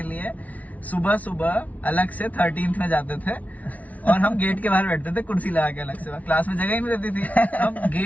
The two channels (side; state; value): right; late; 0.070 ms